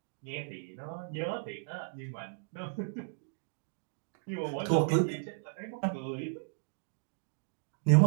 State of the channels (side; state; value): left; silent; digital silence